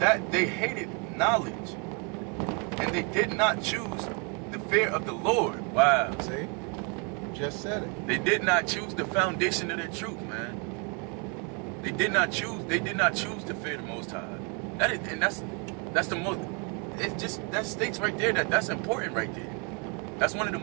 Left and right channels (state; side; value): quieter; left; 34.9 dB